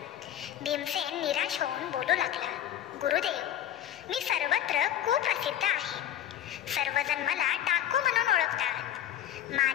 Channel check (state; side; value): quieter; right; 11.2 dB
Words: भीमसेन निराश होऊन बोलू लागला, गुरुदेव, मी सर्वत्र कुप्रसिद्ध आहे. सर्वजण मला डाकू म्हणून ओळखतात.